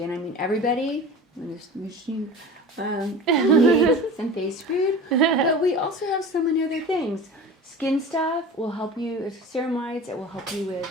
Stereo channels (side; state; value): both; normal; correlation 0.35